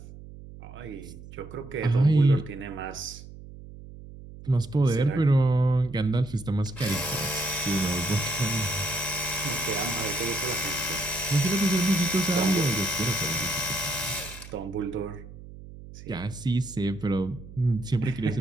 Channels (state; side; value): noise; right; hum, 16 dB below the sound